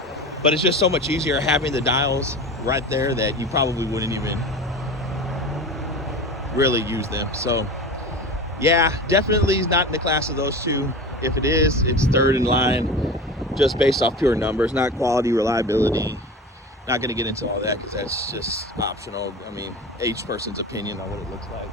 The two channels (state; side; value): normal; both; correlation 0.32